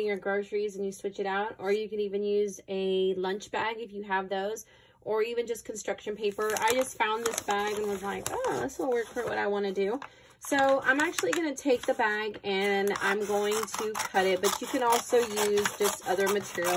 your groceries and you switch it out, or you can even use a lunch bag if you have those, or even just construction paper. I just found this bag and was like, oh, this will work for what I want to do. So I'm actually going to take the bag and I'm going to cut it, but you can also use just other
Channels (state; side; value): identical; both; correlation 1.00